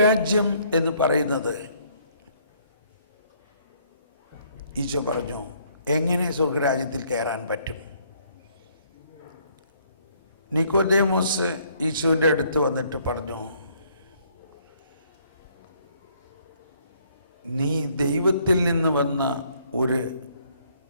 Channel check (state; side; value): inverted; both; correlation -0.65